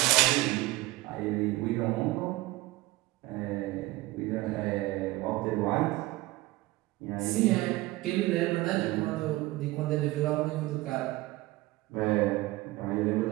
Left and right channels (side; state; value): left; quieter; 19.2 dB